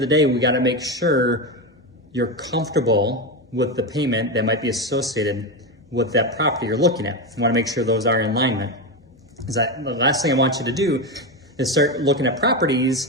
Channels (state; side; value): normal; both; correlation 0.14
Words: the day, we gotta make sure you're comfortable with the payment that might be associated with that property you're looking at. You wanna make sure those are in alignment. The last thing I want you to do is start looking at